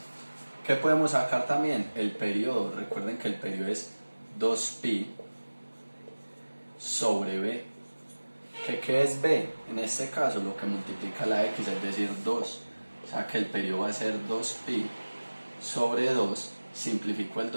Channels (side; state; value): both; inverted; correlation -1.00